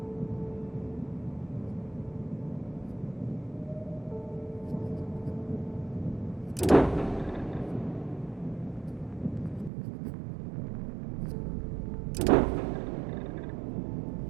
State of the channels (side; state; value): left; drops out; at 9.7 s